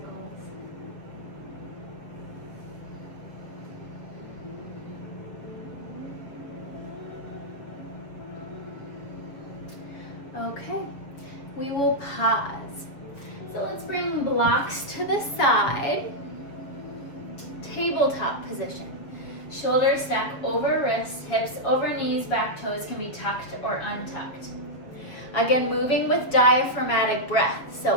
Okay, we will pause. So let's bring blocks to the side. Tabletop position. Shoulders stack over wrists, hips over knees, back toes can be tucked or untucked. Again, moving with diaphragmatic breath.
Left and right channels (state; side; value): late; right; 7.2 ms